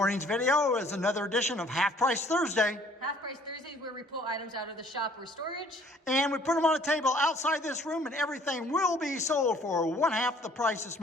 video is another edition of Half Price Thursday. Half Price Thursday is where we pull items out of the shop or storage. And we put them on a table outside this room, and everything will be sold for one half the price is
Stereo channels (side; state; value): both; normal; correlation 0.57